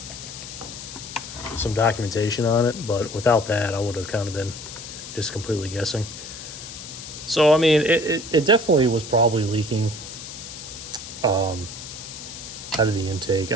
documentation on it, but without that, I would have kind of been just completely guessing. So, I mean, it definitely was probably leaking out of the intake.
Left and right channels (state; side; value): noise; left; hiss, 11 dB below the sound